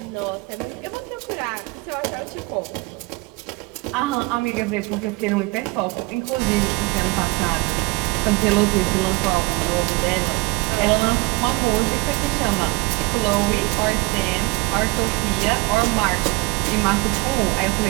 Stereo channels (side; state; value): left; quieter; 24.5 dB